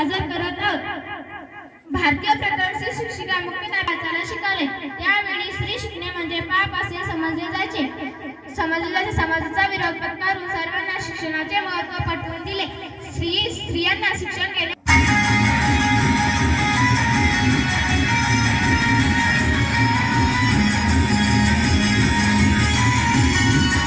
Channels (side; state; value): both; identical; correlation 1.00